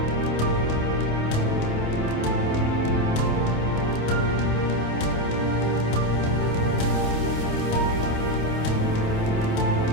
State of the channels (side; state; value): right; late; 27 ms